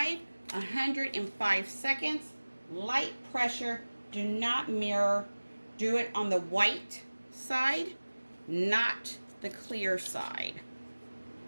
105 seconds, light pressure. Do not mirror. Do it on the white side, not the clear side.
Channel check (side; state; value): both; inverted; correlation -1.00